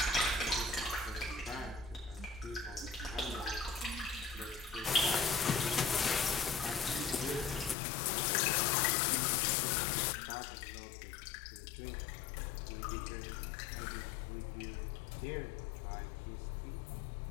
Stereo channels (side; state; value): right; drops out; at 7.8 s